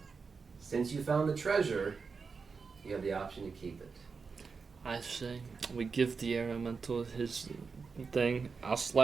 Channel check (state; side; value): quieter; left; 5.0 dB